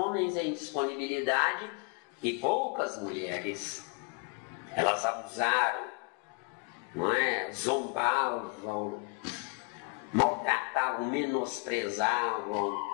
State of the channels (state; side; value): quieter; right; 33.5 dB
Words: em disponibilidade e poucas mulheres. Elas abusaram, não é? Zombavam, maltratavam, menosprezavam.